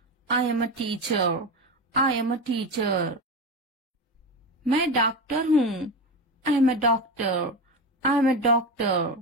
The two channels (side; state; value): both; normal; correlation 0.20